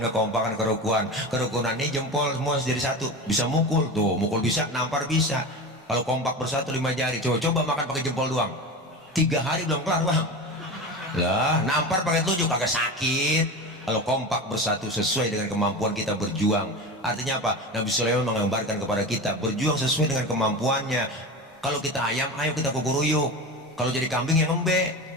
kerukunan ini jempol semua jadi satu. Bisa mukul tuh, mukul bisa, nampar bisa. Kalau kompak bersatu 5 jari, coba makan pakai jempol doang, 3 hari belum kelar bang. Lah nampar pakai telunjuk agak sakit. Kalau kompak bersatu sesuai dengan kemampuan kita berjuang. Artinya apa? Nabi Sulaiman menggambarkan kepada kita berjuang sesuai dengan kemampuannya. Kalau kita ayam, ayo kita kukuruyuk. Kalau jadi kambing yang ngembek,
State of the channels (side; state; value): both; normal; correlation 0.27